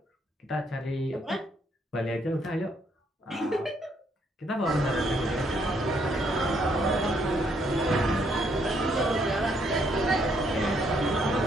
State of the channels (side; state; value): both; normal; correlation 0.71